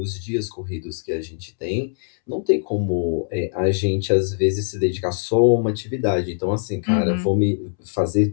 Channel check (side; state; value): right; silent; 64 dB below the other